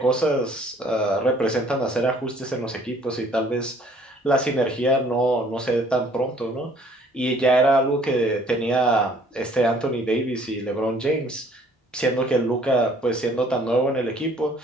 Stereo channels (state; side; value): normal; both; correlation 0.58